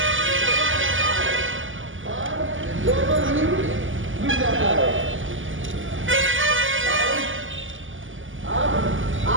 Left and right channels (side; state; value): left; late; 0.58 ms